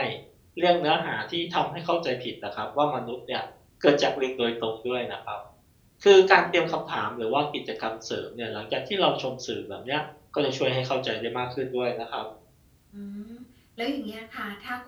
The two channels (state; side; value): identical; both; correlation 1.00